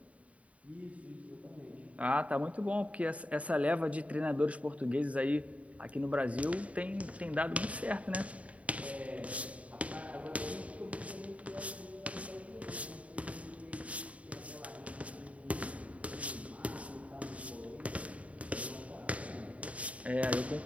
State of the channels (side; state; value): left; late; 0.067 ms